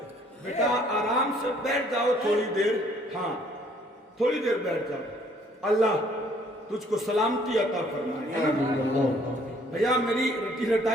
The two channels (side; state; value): both; normal; correlation 0.61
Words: بیٹا آرام سے بیٹھ جاؤ تھوڑی دیر. ہاں تھوڑی دیر بیٹھ جاؤ. اللہ تجھ کو سلامتی عطا فرمائے. بھیا میری رٹی